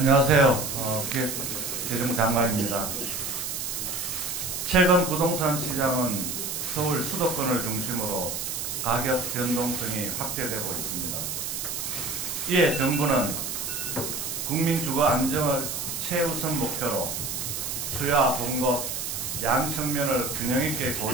기획재정부 장관입니다. 최근 부동산 시장은 서울 수도권을 중심으로 가격 변동성이 확대되고 있습니다. 이에 정부는 국민 주거 안정을 최우선 목표로 수요와 공급, 양 측면을 균형 있게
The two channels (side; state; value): right; noise; hiss, 4 dB below the sound